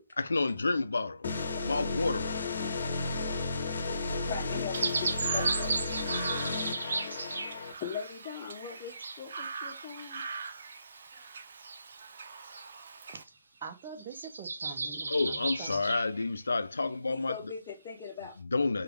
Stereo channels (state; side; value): inverted; both; correlation -0.82